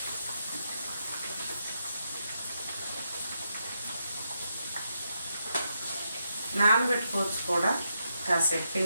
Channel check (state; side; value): inverted; both; correlation -0.83